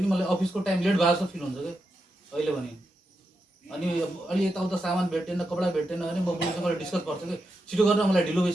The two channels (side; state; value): both; normal; correlation 0.86